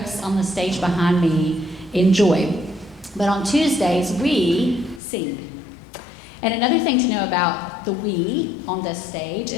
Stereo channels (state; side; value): drops out; right; at 5.0 s